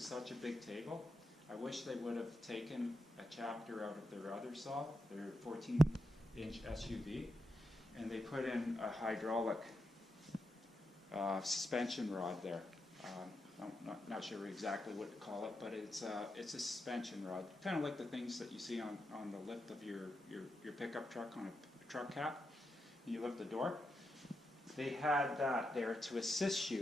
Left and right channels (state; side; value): normal; both; correlation 0.86